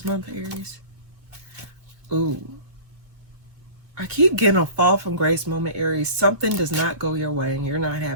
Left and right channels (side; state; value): left; late; 2.3 ms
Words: month, Aries? Ooh. I keep getting a fall from grace moment, Aries. Something does not go your way and you're not